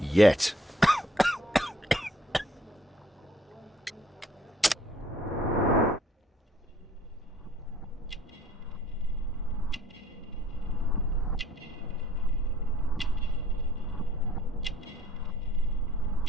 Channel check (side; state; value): both; normal; correlation 0.58